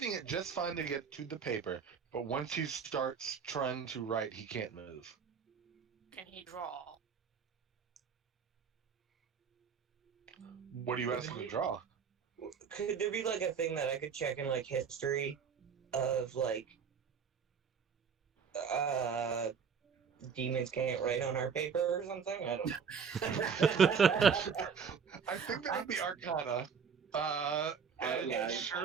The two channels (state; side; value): quieter; left; 6.5 dB